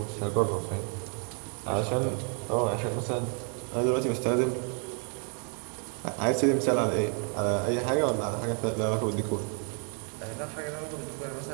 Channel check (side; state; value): left; quieter; 39.7 dB